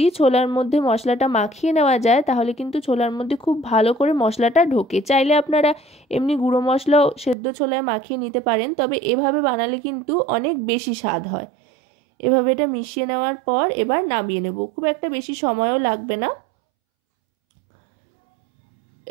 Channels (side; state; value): left; drops out; at 7.4 s